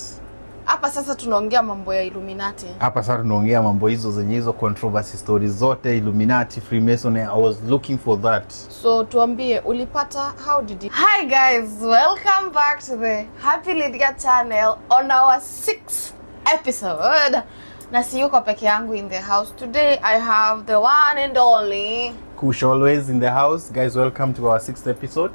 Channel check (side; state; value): both; inverted; correlation -1.00